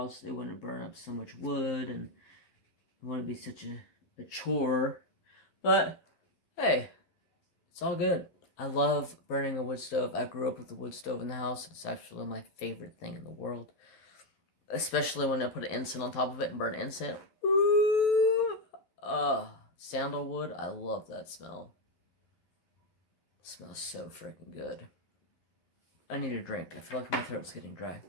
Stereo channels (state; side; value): late; right; 12 ms